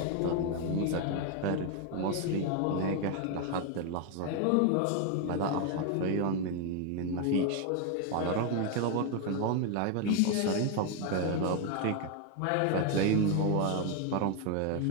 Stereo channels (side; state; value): both; different; correlation 0.01